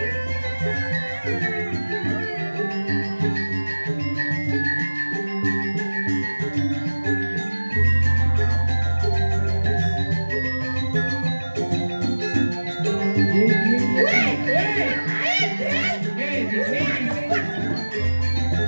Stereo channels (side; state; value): both; inverted; correlation -1.00